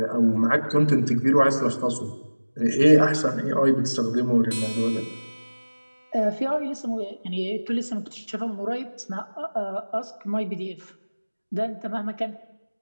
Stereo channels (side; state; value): both; inverted; correlation -1.00